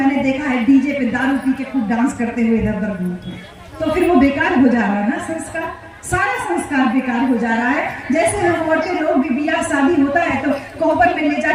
देखा है डीजे पे दारू पी के खूब डांस करते हुए इधर उधर घूमते हैं, तो फिर वो बेकार हो जा रहा है ना संस्कार, सारा संस्कार बेकार हो जा रहा है। जैसे हम औरतें लोग भी ब्याह शादी होता है तो कोहबर में ले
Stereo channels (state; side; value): identical; both; correlation 1.00